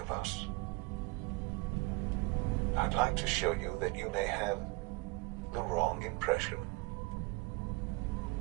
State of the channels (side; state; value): left; quieter; 26.2 dB